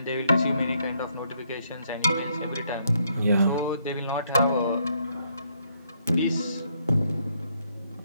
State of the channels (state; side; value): inverted; both; correlation -0.72